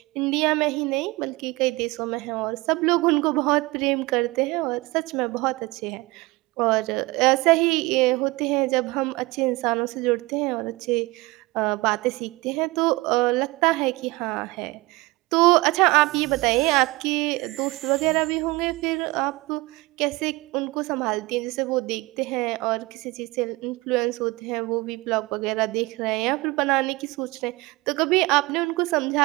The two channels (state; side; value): quieter; left; 22.5 dB